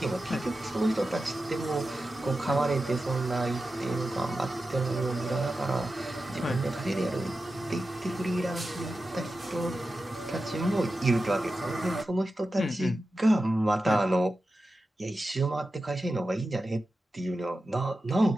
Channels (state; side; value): normal; both; correlation 0.92